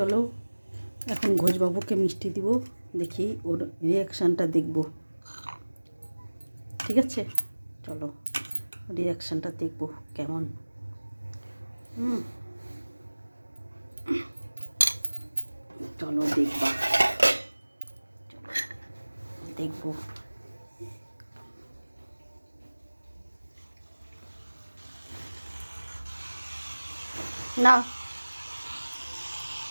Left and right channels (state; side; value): inverted; both; correlation -1.00